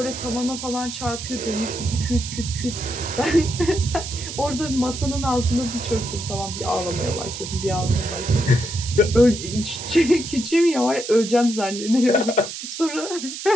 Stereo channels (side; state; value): right; noise; hiss, 8 dB below the sound